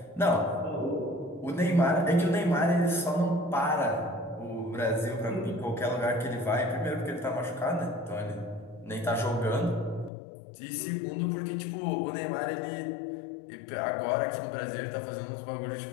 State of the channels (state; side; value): drops out; right; at 10.1 s